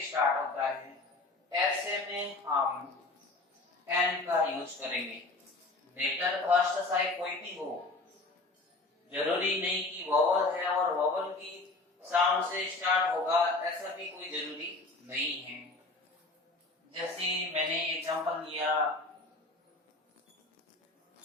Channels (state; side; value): quieter; right; 3.2 dB